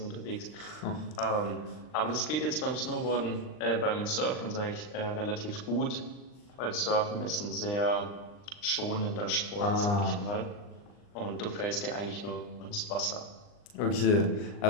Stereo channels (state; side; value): late; right; 39 ms